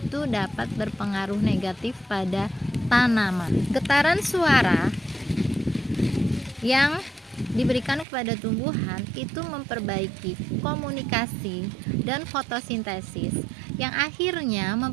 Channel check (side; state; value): left; drops out; at 8.1 s